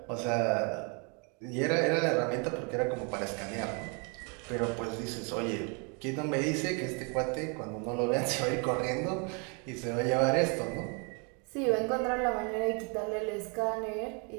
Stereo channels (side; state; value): left; quieter; 34.7 dB